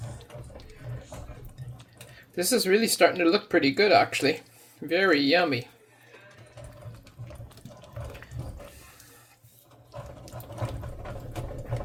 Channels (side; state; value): both; identical; correlation 1.00